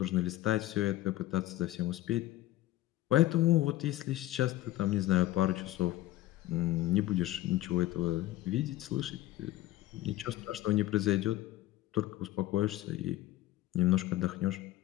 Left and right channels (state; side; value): quieter; right; 15.6 dB